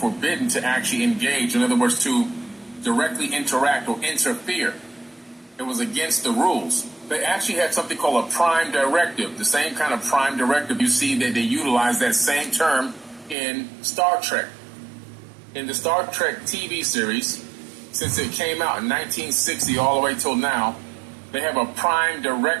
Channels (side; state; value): left; drops out; at 13.4 s